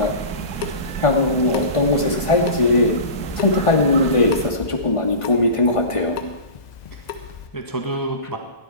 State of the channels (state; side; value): late; right; 1.5 ms